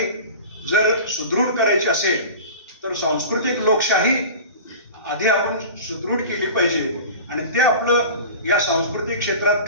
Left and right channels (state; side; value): inverted; both; correlation -0.36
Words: जर सुदृढ करायची असेल तर सांस्कृतिक लोकशाही आधी आपण सुदृढ केली पाहिजे आणि ते आपलं या सांस्कृतिक क्षेत्रात